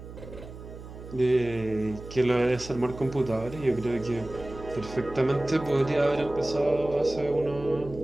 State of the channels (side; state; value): right; noise; hum, 14 dB below the sound